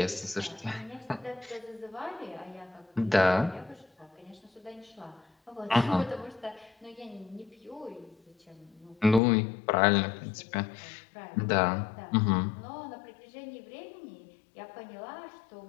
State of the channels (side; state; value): right; drops out; at 9.2 s